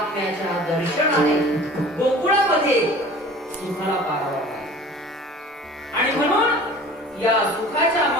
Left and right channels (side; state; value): both; normal; correlation 0.44